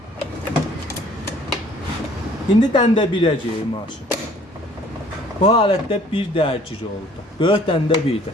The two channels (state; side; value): normal; both; correlation 0.55